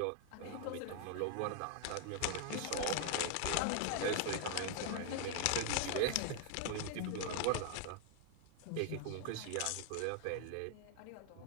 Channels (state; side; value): different; both; correlation 0.00